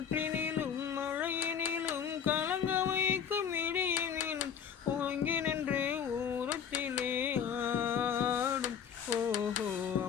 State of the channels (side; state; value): right; quieter; 7.8 dB